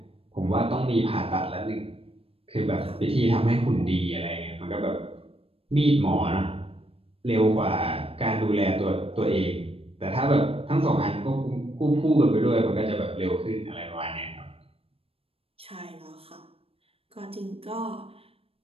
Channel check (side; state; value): left; late; 0.28 ms